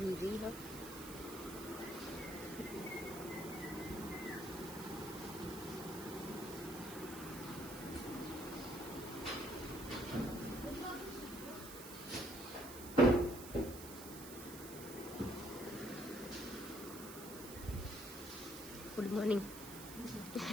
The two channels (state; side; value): noise; right; hiss, 11 dB below the sound